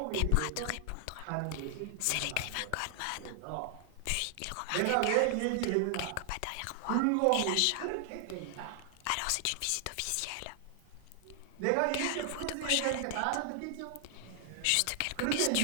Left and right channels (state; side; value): different; both; correlation 0.00